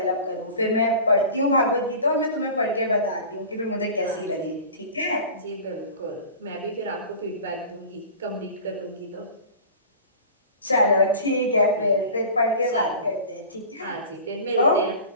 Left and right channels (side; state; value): both; inverted; correlation -0.38